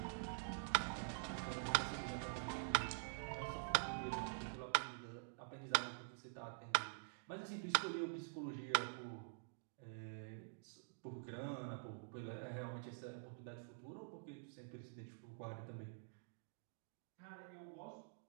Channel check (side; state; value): left; silent; digital silence